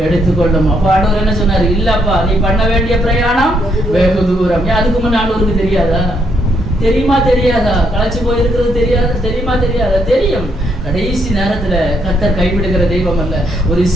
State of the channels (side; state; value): both; normal; correlation 0.74